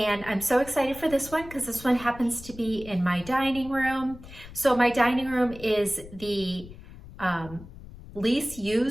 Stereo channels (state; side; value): noise; left; rumble, 16 dB below the sound